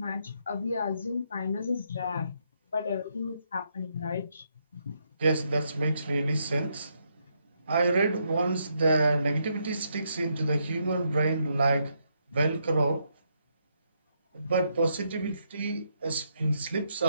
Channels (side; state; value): both; inverted; correlation -0.77